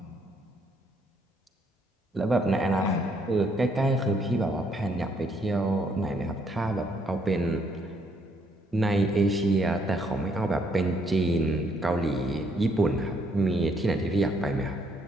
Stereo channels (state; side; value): normal; both; correlation 0.70